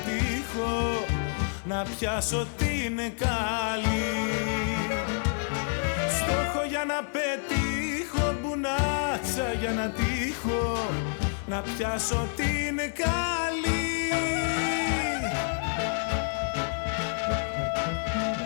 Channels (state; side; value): silent; right; digital silence